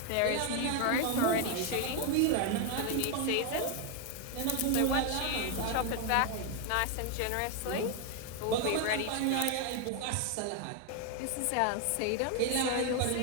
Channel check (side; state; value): both; different; correlation 0.01